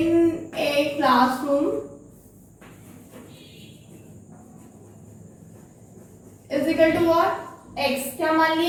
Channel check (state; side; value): identical; both; correlation 1.00